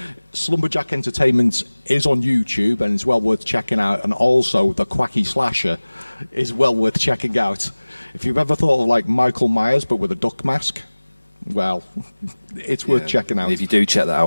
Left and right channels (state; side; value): inverted; both; correlation -1.00